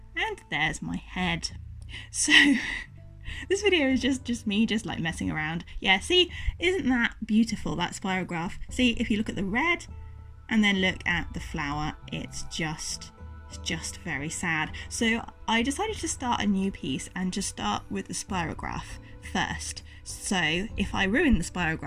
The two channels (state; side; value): identical; both; correlation 1.00